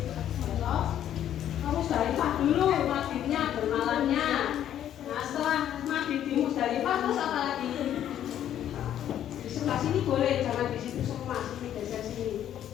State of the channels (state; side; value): quieter; right; 10.8 dB